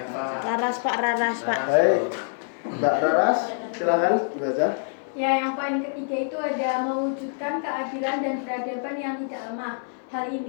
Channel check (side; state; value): right; silent; digital silence